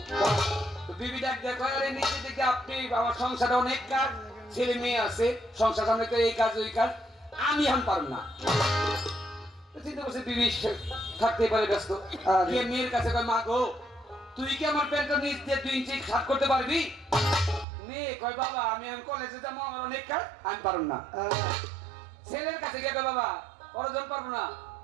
তো বিবি ডাক দেখো, আরে নিচের দিকে আপনি, আমার সংসারে অনেক কাজ, ছেলে মেয়ে আছে, সংসার সামনে তো এই কাজ ওই কাজ, আমি এখন পারব না। চিন্তা করছে বিবি থাকতে পারে ব্যস্ত, গিয়ে মেয়ের কাছে কয়, মা গো তুই কি আমার প্যান্টটা নিচ দিয়ে 2 ইঞ্চি শার্ট করতে পারবি? মেয়ে কয়, বাবা আমি এখন কলেজে যাবো, আমার অনেক কাজ, আমি পারব না। ছেলের কাছে গিয়ে, বাবা অর্জন পারবো না,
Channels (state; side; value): drops out; left; at 17.7 s